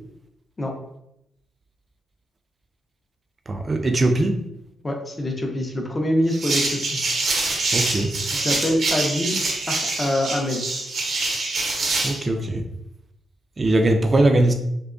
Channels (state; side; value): normal; both; correlation 0.87